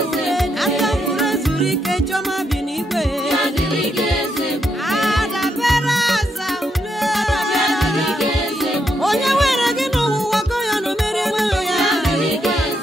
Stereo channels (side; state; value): both; normal; correlation 0.79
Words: Aka mkpụrụ ezuru ike chiọma bi n'igwe. Ya dịrị gị Eze Ebube. Adabere aza ule. Ya dịrị gị Eze Ebube. Onye were gị n'ụwa gọ ya na o merie ego ya. Ya dịrị gị